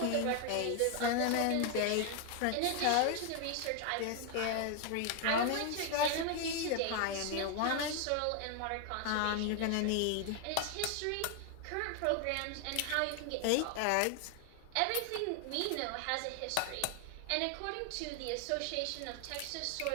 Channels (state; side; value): different; both; correlation 0.01